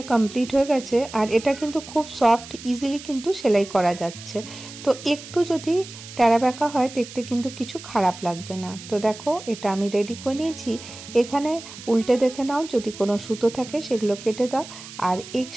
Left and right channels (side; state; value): right; noise; hiss, 15 dB below the sound